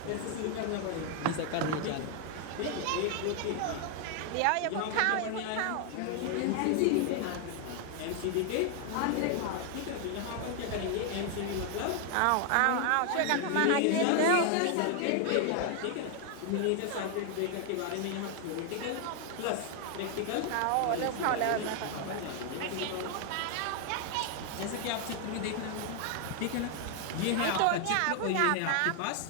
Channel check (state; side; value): different; both; correlation 0.00